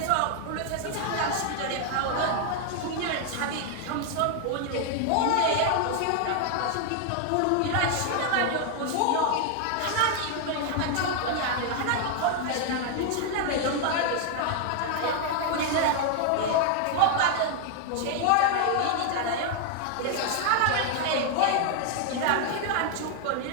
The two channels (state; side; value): different; both; correlation 0.00